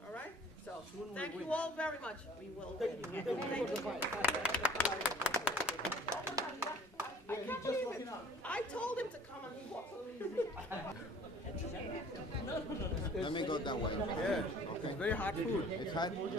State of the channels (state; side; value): normal; both; correlation 0.51